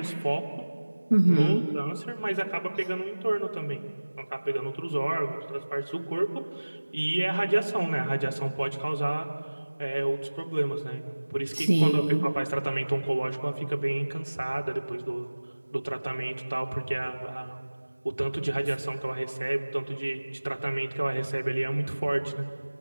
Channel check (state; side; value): inverted; both; correlation -1.00